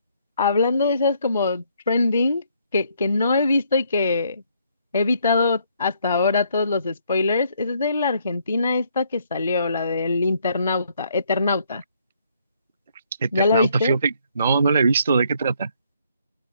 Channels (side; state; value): both; inverted; correlation -0.68